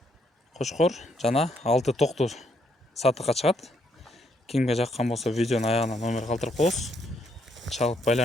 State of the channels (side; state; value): both; normal; correlation 0.73